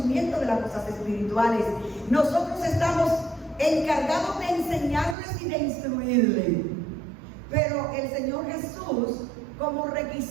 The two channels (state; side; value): drops out; left; at 5.2 s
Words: de las cosas espirituales. Nosotros estamos encargados de enseñarles y de instruirles. Pero el Señor Jesús, como